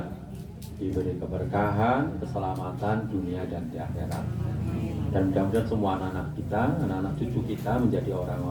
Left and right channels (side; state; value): both; identical; correlation 1.00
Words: diberi keberkahan, keselamatan dunia dan di akhirat. Dan mudah-mudahan semua anak-anak kita, anak-anak cucu kita menjadi